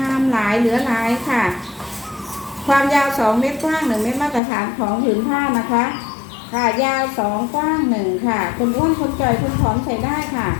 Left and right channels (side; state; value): right; drops out; at 4.4 s